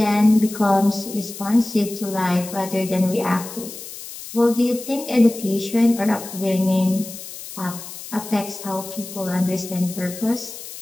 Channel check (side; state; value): left; noise; hiss, 12 dB below the sound